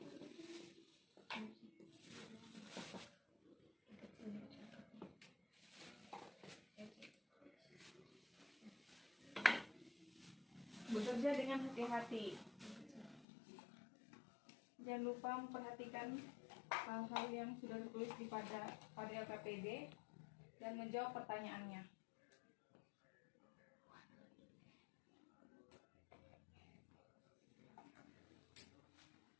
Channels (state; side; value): drops out; right; at 13.2 s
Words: Bekerja dengan hati-hati. Jangan lupa memperhatikan hal-hal yang sudah tertulis pada LKPD dan menjawab pertanyaannya.